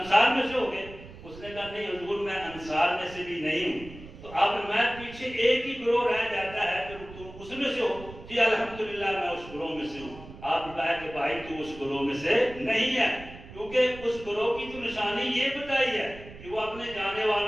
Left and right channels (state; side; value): noise; right; rumble, 16 dB below the sound